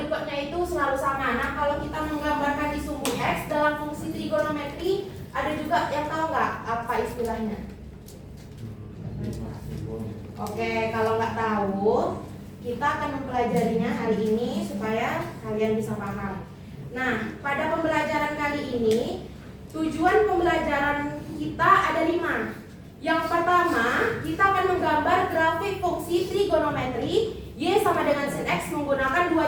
itu selalu sama. Nah, kalau kita menggambarkan di sumbu X dalam fungsi trigonometri, ada juga yang tahu nggak apa istilahnya? Oke, kalau nggak tahu, kita akan mempelajarinya hari ini supaya kalian bisa paham. Nah, pada pembelajaran kali ini, tujuan pembelajaran kita ada 5. Yang pertama, kita akan menggambar grafik fungsi trigonometri Y sama dengan sin X menggunakan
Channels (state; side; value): identical; both; correlation 1.00